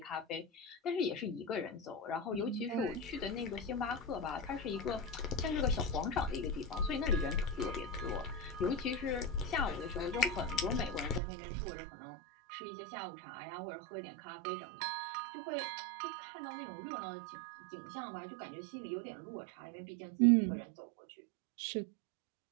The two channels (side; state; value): left; drops out; at 11.2 s